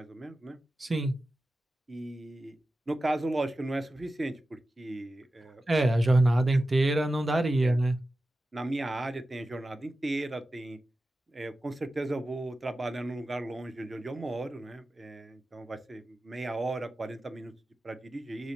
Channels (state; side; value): normal; both; correlation 0.93